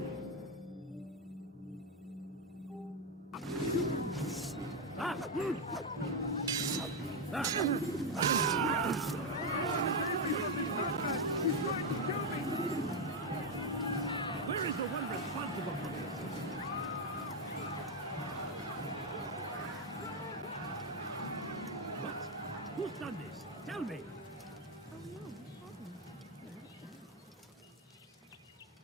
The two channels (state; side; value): normal; both; correlation 0.04